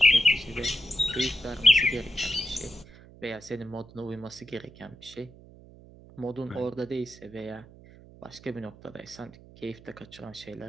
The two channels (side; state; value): right; noise; hum, 21 dB below the sound